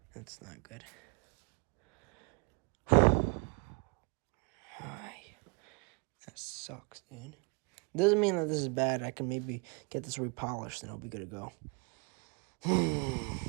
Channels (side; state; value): left; quieter; 32.3 dB